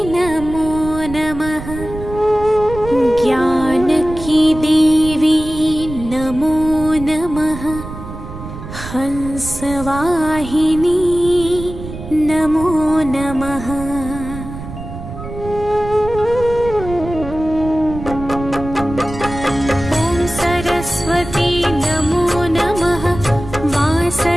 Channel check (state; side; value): noise; right; rumble, 11 dB below the sound